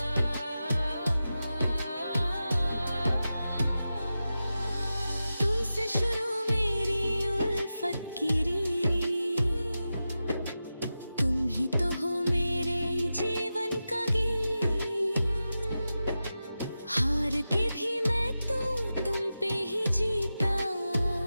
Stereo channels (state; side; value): inverted; both; correlation -0.92